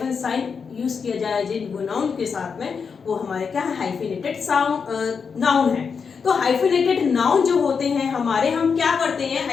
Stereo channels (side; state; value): right; quieter; 5.9 dB